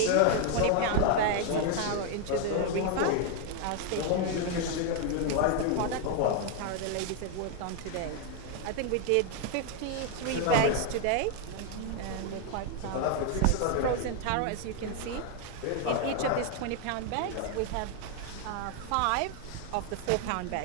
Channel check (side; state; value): both; different; correlation 0.01